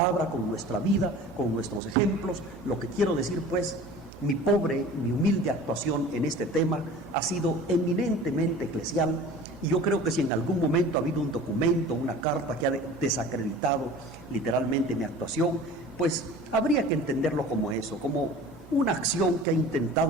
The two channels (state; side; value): normal; both; correlation 0.41